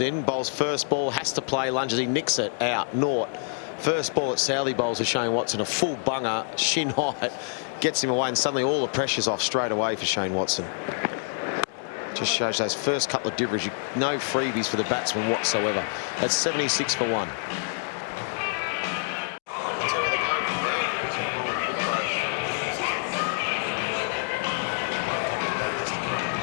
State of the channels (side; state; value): right; silent; digital silence